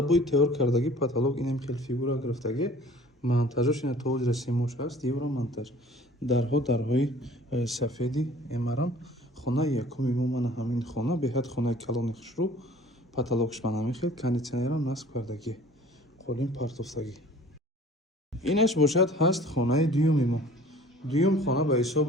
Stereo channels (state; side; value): normal; both; correlation 0.49